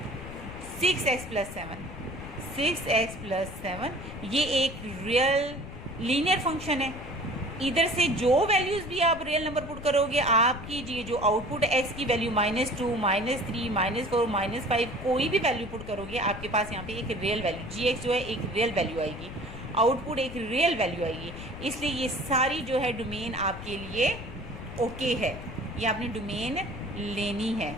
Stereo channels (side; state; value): left; noise; rumble, 12 dB below the sound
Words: 6x + 7, 6x + 7, ये एक रियल लीनियर फंक्शन है। इधर से जो वैल्यूज़ भी आप रियल नंबर पुट करोगे, आपकी ये जो आउटपुट x की वैल्यू -2 -3 -4 -5 कोई भी वैल्यू पुट करोगे, आपके पास यहाँ पे एक रियल वैल्यू gx जो है एक रियल वैल्यू आएगी, आउटपुट एक रियल वैल्यू आएगी। इसलिए ये सारी जो है डोमेन आपके लिए ओके है, ये आपने डोमेन लेनी है,